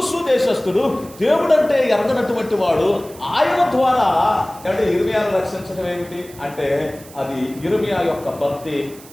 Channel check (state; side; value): noise; right; hiss, 20 dB below the sound